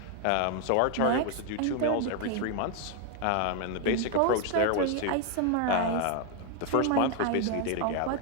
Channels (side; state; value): both; different; correlation 0.01